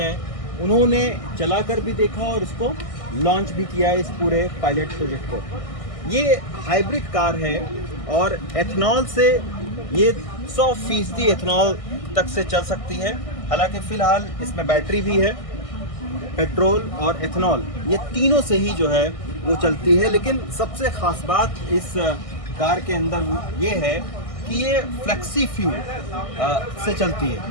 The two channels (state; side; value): late; right; 1.6 ms